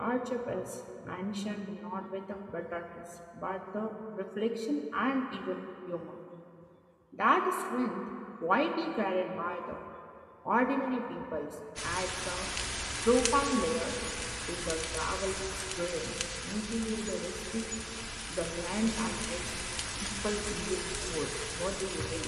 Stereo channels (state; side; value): identical; both; correlation 1.00